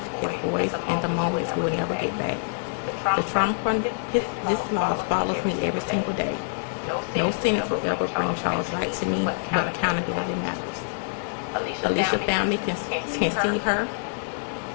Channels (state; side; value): silent; right; digital silence